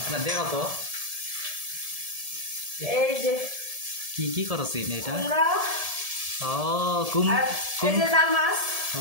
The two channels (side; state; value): left; late; 1.7 ms